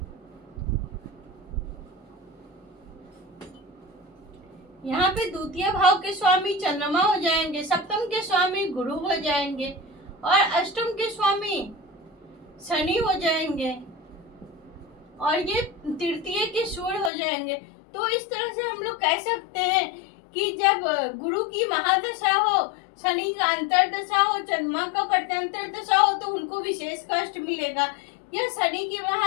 यहाँ पे द्वितीय भाव के स्वामी चंद्रमा हो जाएंगे, सप्तम के स्वामी गुरु हो जाएंगे और अष्टम के स्वामी शनि हो जाएंगे और ये तृतीय के सूर्य हो जाएंगे। तो इस तरह से हम लोग कह सकते हैं कि जब गुरु की महादशा हो, शनि का अंतर्दशा हो, चंद्रमा का प्रत्यंतर दशा हो तो उनको विशेष कष्ट मिलेगा। या शनि की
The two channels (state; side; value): drops out; right; at 17.1 s